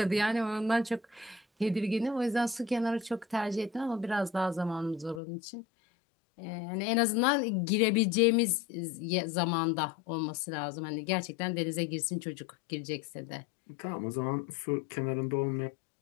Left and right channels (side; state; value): right; drops out; at 5.2 s